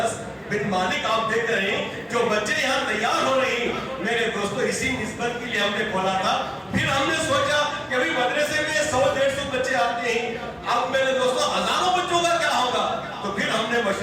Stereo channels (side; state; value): both; identical; correlation 1.00